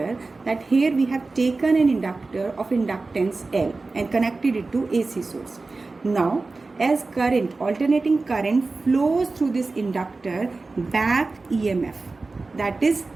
that here we have taken an inductor of inductance L and connected it to AC source. Now as current, alternating current flows through this inductor, back EMF that is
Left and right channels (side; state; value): left; quieter; 3.6 dB